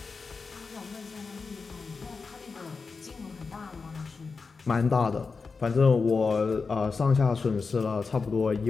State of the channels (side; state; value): right; quieter; 4.7 dB